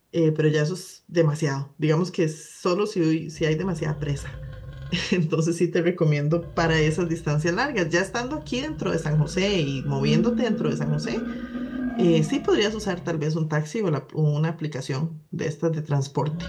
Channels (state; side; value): identical; both; correlation 1.00